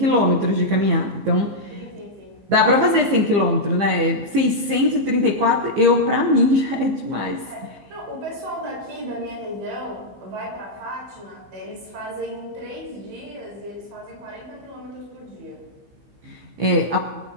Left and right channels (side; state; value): left; late; 15 ms